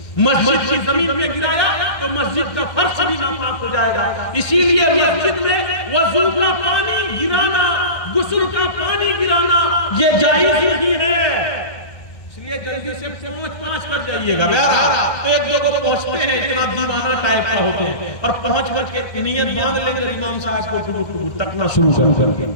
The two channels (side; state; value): right; late; 1.6 ms